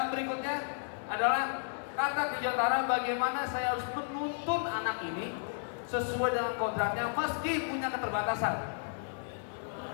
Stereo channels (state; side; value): silent; right; 56 dB below the other